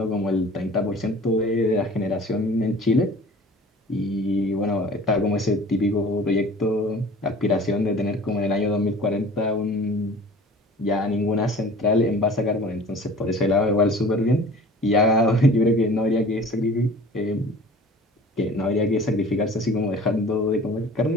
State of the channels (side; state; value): both; normal; correlation 0.44